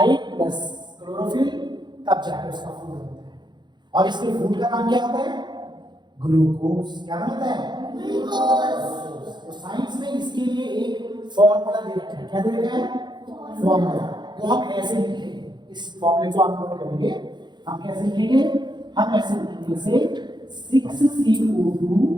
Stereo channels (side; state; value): left; late; 0.21 ms